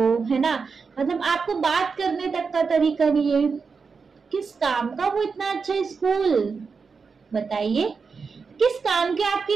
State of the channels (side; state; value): left; quieter; 5.1 dB